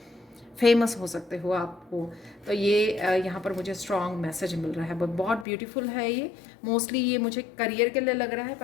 फेमस हो सकते हो आपको। तो ये यहाँ पर मुझे स्ट्रॉन्ग मैसेज मिल रहा है, बहुत ब्यूटीफुल है ये। मोस्टली ये मुझे करियर के लिए लग रहा है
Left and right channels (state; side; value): drops out; right; at 5.5 s